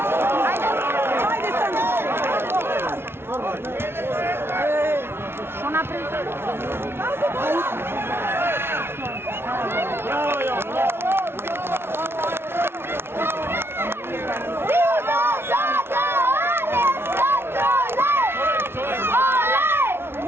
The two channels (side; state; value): left; late; 0.12 ms